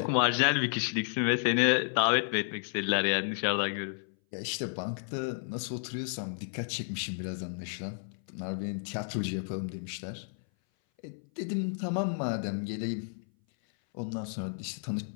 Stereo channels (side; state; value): right; silent; 57 dB below the other